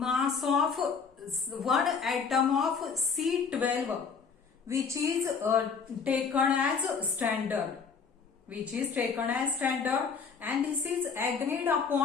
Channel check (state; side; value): quieter; right; 5.6 dB